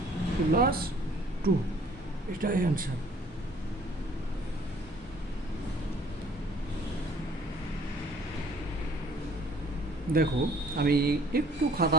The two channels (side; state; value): both; normal; correlation 0.57